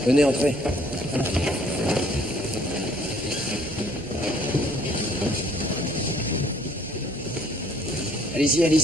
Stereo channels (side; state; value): right; noise; hum, 19 dB below the sound